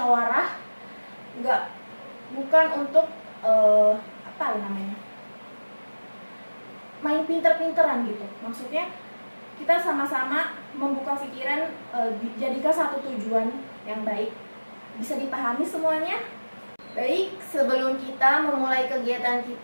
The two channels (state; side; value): inverted; both; correlation -1.00